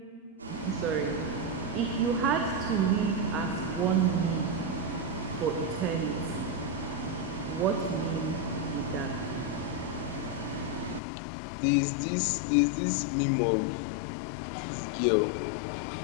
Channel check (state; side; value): drops out; right; at 11.0 s